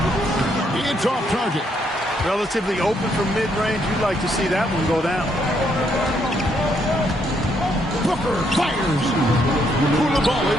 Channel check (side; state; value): both; normal; correlation 0.73